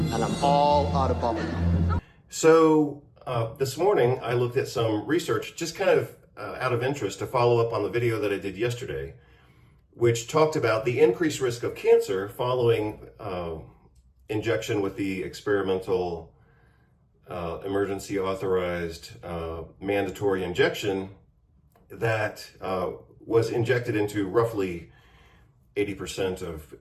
And I'm all out of bubblegum. So, this morning I looked at some research, just kind of out of interest, to follow up on the video that I did yesterday, which talked about the increased risk of cancer following injection with the experimental emergency-authorized mandatory injection that was injected into roughly 80%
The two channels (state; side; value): identical; both; correlation 1.00